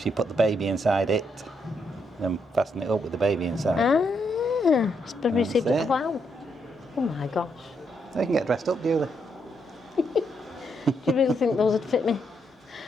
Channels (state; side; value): normal; both; correlation 0.77